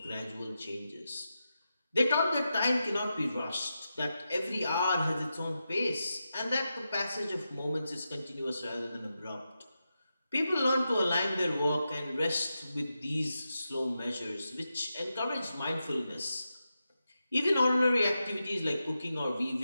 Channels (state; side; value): inverted; both; correlation -0.89